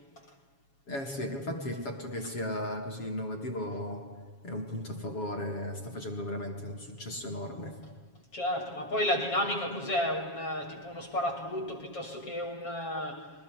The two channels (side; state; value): right; late; 7.3 ms